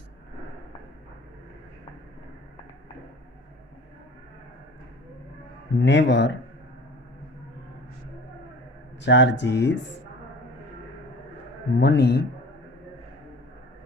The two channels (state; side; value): normal; both; correlation 0.43